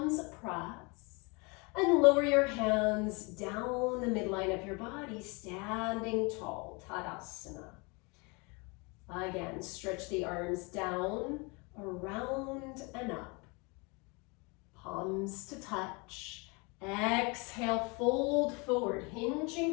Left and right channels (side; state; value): right; quieter; 29.5 dB